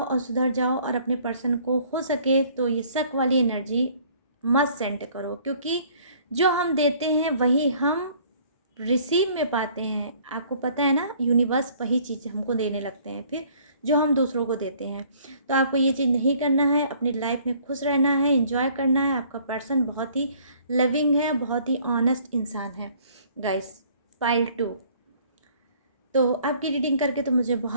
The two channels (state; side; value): inverted; both; correlation -0.57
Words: और सुधर जाओ, और अपने पर्सन को हो सके तो ये शक वाली एनर्जी मत सेंड करो, क्योंकि जो हम देते हैं वही हम रिसीव में पाते हैं। आपको पता है ना, यूनिवर्स वही चीज़ हमको देने लगते हैं फिर जो हम दूसरों को देते हैं। तो आपको ये चीज़ नहीं करना है, अपनी लाइफ में खुश रहना है, एंजॉय करना है। आपका पर्सन बहुत ही लविंग है, बहुत ही ऑनेस्ट इंसान है गाइस। पाइल 2, तो आपकी रीडिंग करके तो मुझे